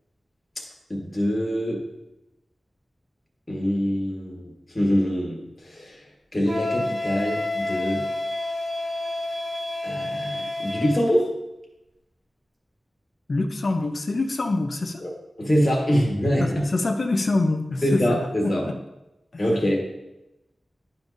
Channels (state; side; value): normal; both; correlation 0.96